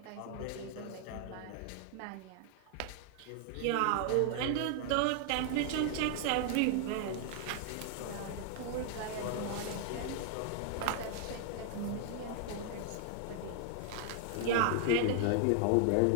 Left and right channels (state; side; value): different; both; correlation 0.00